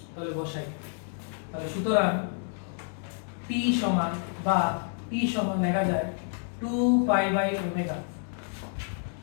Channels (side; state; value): right; silent; 59 dB below the other